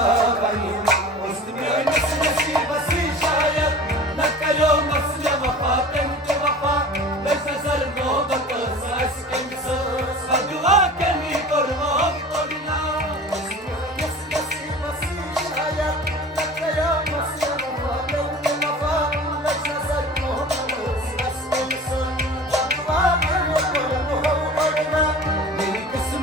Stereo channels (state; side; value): normal; both; correlation 0.39